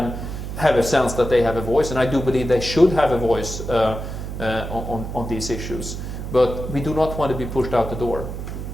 have a sense that they have a voice, and I do believe they should have a voice on these issues. But we do not want to be pushed out the door.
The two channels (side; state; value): right; noise; hum, 7 dB below the sound